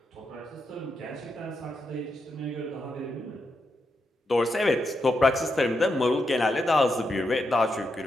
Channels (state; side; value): normal; both; correlation 0.84